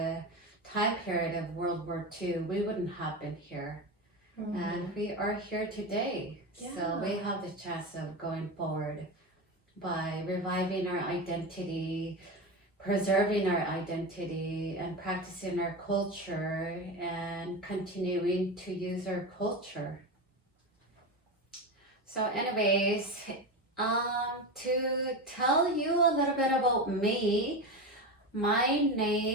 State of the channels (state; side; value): normal; both; correlation 0.21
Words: time period of World War II, we wouldn't have been here. And we are here today. Yeah. So we have the chance of going forward by reviving our identity, preserving our identity, and practicing our culture, and continuing to use our culture. So anyways, to tell you a little bit about me, my